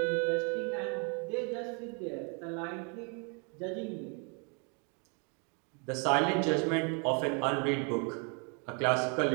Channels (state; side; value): quieter; left; 36.0 dB